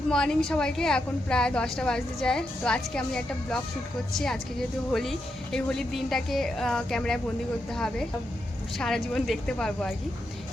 morning সবাইকে। এখন প্রায় 10টা বাজতে যায়। তো আজকে আমি একটা ব্লগ শ্যুট করছি। আজকে যেহেতু হোলি, এই হোলির দিনটাকে ক্যামেরায় বন্দি করতে হবে, সারা জীবন দেখতে পারবো আর কি।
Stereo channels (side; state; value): both; normal; correlation 0.84